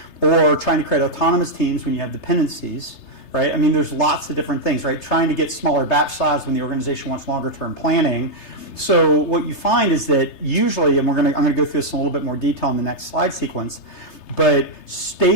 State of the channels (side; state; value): right; late; 3.3 ms